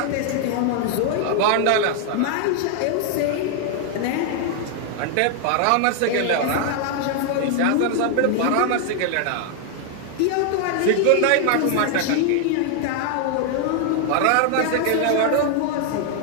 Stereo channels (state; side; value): different; both; correlation 0.00